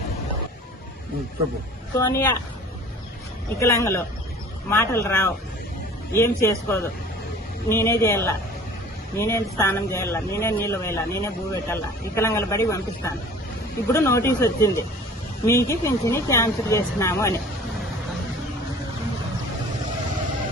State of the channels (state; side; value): normal; both; correlation 0.46